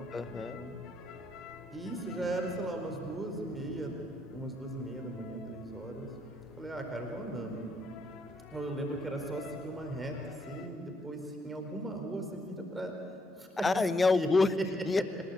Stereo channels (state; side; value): normal; both; correlation 0.74